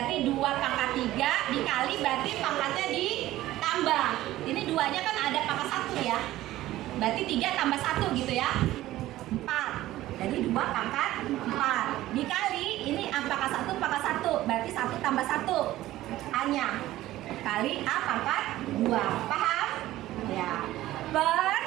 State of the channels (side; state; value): left; quieter; 15.4 dB